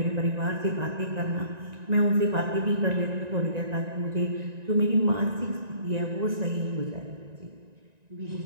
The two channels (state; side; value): late; left; 1.9 ms